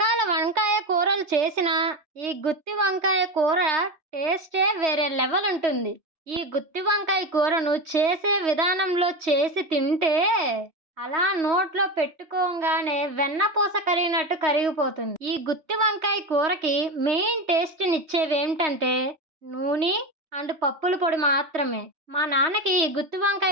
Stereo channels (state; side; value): late; left; 3.2 ms